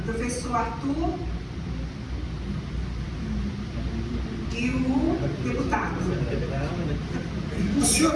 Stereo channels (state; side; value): identical; both; correlation 1.00